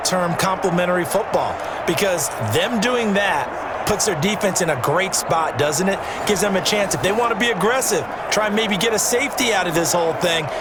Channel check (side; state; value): both; identical; correlation 1.00